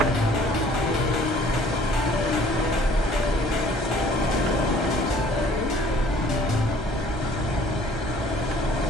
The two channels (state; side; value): normal; both; correlation 0.54